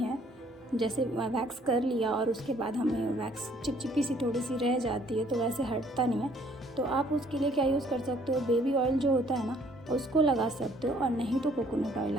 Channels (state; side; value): normal; both; correlation 0.61